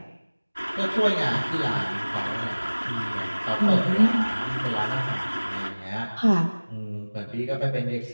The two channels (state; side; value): inverted; both; correlation -1.00